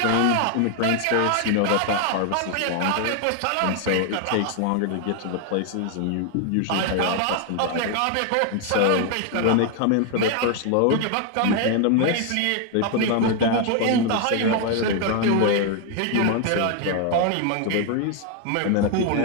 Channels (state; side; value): different; both; correlation 0.00